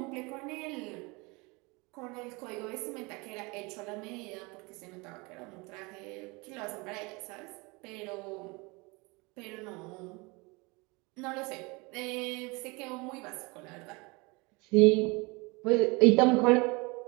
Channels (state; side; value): quieter; left; 26.7 dB